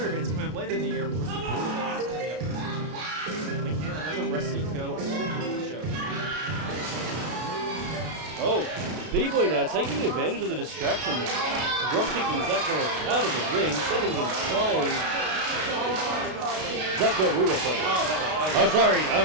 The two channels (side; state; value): left; late; 32 ms